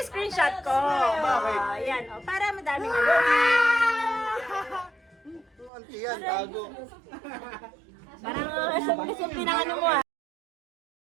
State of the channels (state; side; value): drops out; left; at 5.7 s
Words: shot ko. Bakit? Ayan, oh, para madaming ano. Auntie yan, tago. Parang sa pinang ano mo ah.